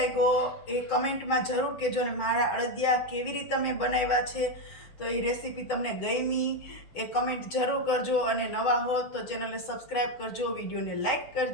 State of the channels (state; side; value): late; right; 6.1 ms